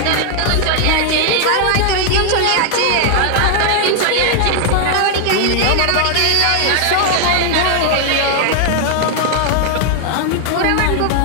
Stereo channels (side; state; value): both; different; correlation 0.00